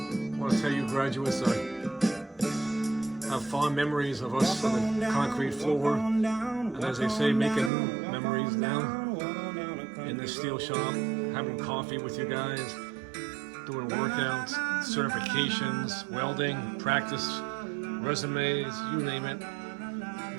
I want to tell you graduates, I have fond memories of us on the concrete floor, and as they say, making new memories now in this steel shop, having coffee with you guys, doing workouts, certifications, welding, practice, resumes, you name it.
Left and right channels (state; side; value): drops out; left; at 7.7 s